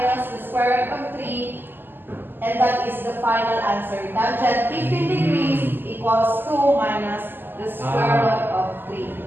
the square root And that is the final answer. Tangent 15 degrees equals 2 minus the square root of 3.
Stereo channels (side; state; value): left; late; 0.094 ms